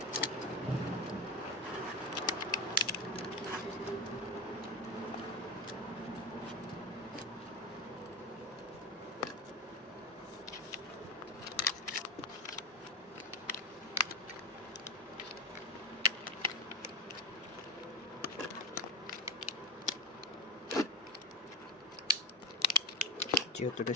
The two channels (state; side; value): normal; both; correlation 0.16